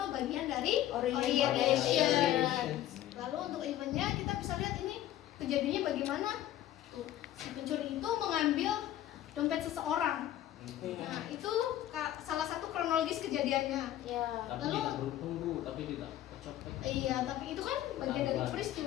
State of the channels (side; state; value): right; quieter; 12.9 dB